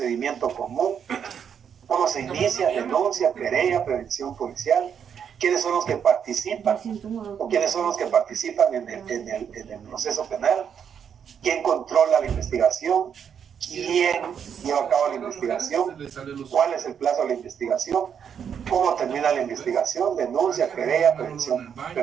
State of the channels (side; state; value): left; quieter; 7.8 dB